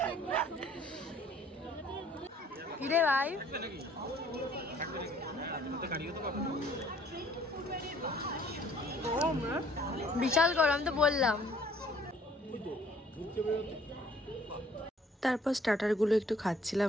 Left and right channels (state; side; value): normal; both; correlation 0.58